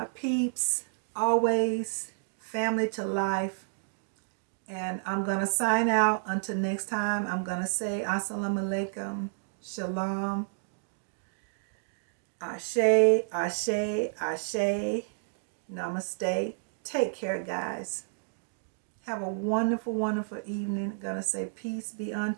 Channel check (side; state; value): left; silent; digital silence